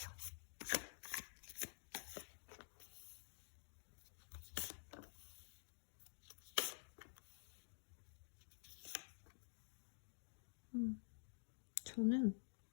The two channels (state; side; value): silent; right; digital silence